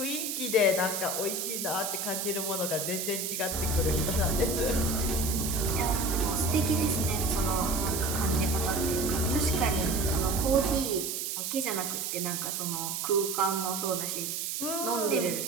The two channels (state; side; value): noise; right; hiss, 3 dB below the sound